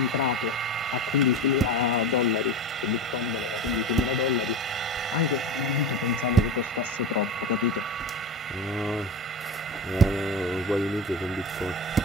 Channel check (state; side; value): normal; both; correlation 0.26